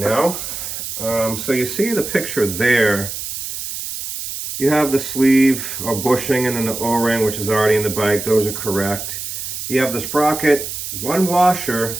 So you see the picture there. You have the sleeve or bushing and then the O-ring, which is already in the bike. Those are correct. You have the sprocket, one washer,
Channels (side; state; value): right; noise; hiss, 6 dB below the sound